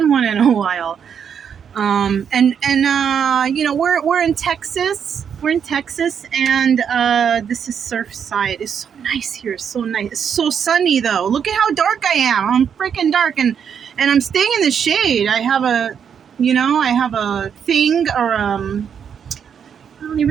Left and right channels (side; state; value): left; quieter; 7.6 dB